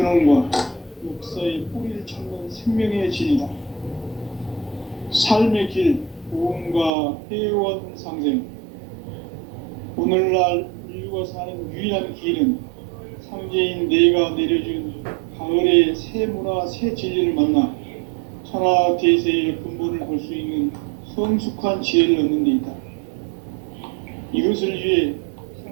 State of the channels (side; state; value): left; drops out; at 6.9 s